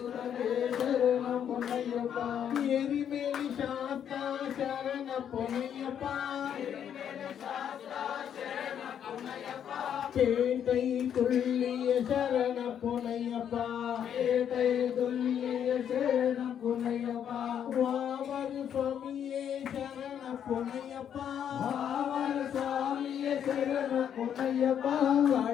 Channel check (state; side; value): quieter; right; 9.0 dB